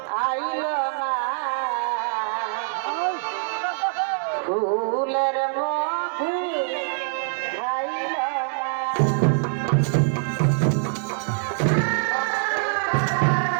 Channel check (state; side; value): silent; left; digital silence